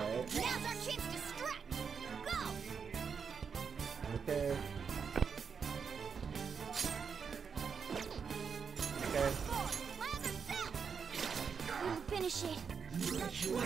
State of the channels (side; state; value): left; quieter; 6.2 dB